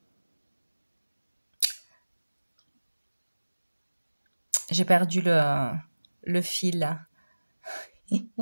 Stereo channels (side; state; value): both; inverted; correlation -1.00